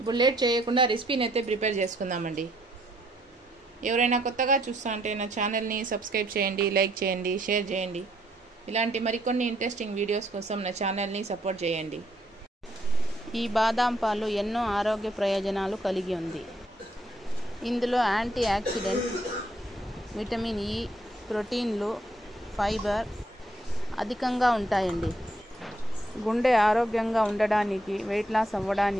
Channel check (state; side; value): normal; both; correlation 0.70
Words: లేట్ చేయకుండా రెసిపీని అయితే ప్రిపేర్ చేసుకుందామండి. ఎవరైనా కొత్తగా చూస్తా అంటే నా ఛానల్ని సబ్స్క్రైబ్ చేయండి, లైక్ చేయండి, షేర్ చేయండి. ఇలాంటి మరికొన్ని ఇంట్రెస్టింగ్ వీడియోస్ కోసం నా ఛానల్ని సపోర్ట్ చేయండి. ఈ బాదాం పాలు ఎన్నో ఆరోగ్య ప్రయోజనాలు కలిగి ఉంది. ఇందులో యాంటీ ఆక్సిడెంట్, విటమిన్ ఇ, ప్రోటీన్లు, ఫైబర్ అధికంగా ఉంటాయండి. గుండె ఆరోగ్యంగా ఉండడానికి, వెయిట్ లాస్